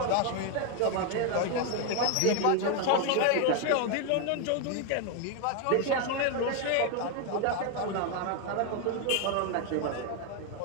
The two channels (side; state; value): both; different; correlation 0.01